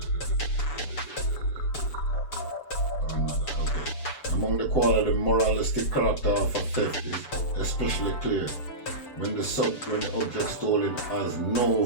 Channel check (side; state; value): right; late; 6.9 ms